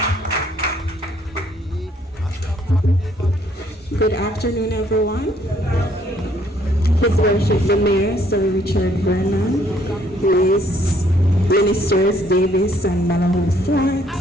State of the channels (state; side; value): normal; both; correlation 0.65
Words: Good afternoon, everyone. His Worship the Mayor, Sir Richard Vernon, Ministers Davis and Malahoo Forte,